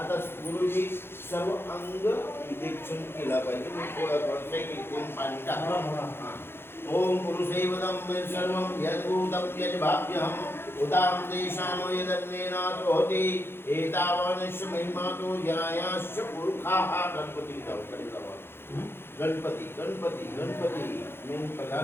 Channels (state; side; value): late; right; 0.11 ms